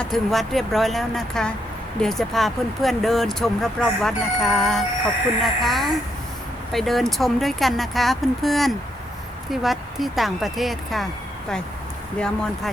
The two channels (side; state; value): both; normal; correlation 0.77